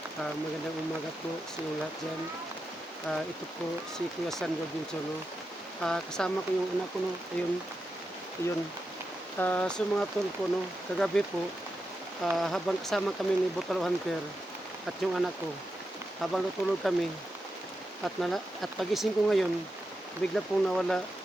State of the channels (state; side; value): normal; both; correlation 0.88